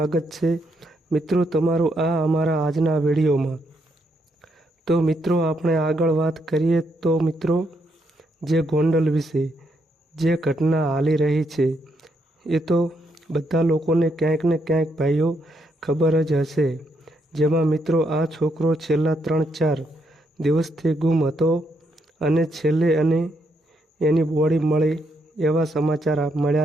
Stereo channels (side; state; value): both; normal; correlation 0.77